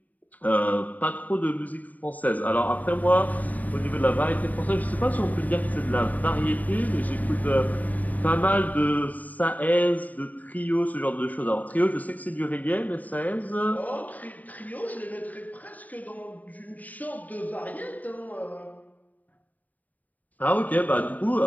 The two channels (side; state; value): right; late; 0.077 ms